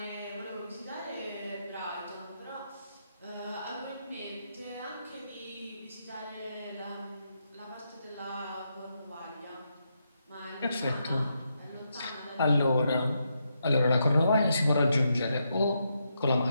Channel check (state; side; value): inverted; both; correlation -0.82